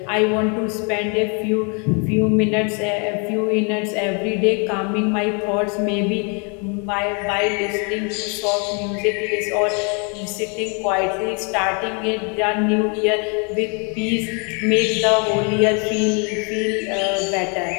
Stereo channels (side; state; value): right; quieter; 35.8 dB